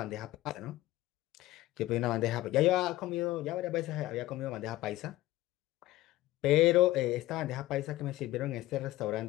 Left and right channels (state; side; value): quieter; right; 16.5 dB